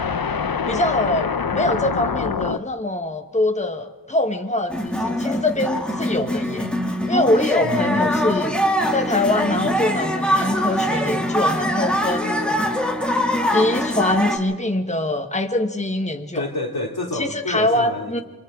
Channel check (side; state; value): both; normal; correlation 0.47